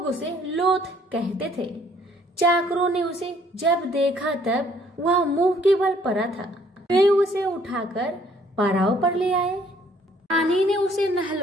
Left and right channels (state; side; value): normal; both; correlation 0.62